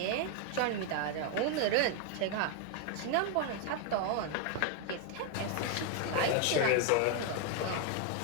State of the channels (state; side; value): different; both; correlation 0.01